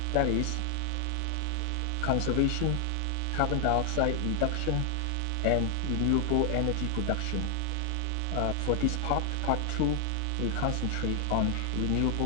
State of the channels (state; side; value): different; both; correlation 0.00